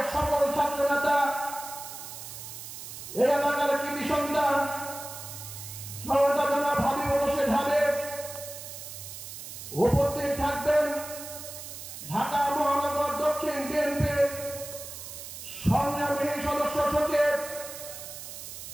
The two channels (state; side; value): noise; right; hiss, 11 dB below the sound